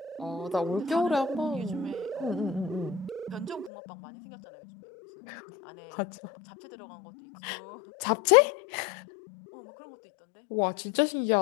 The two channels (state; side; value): drops out; right; at 3.7 s